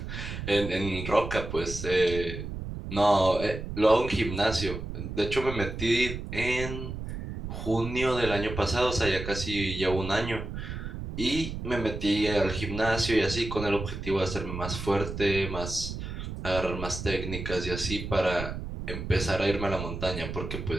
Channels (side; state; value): right; noise; rumble, 7 dB below the sound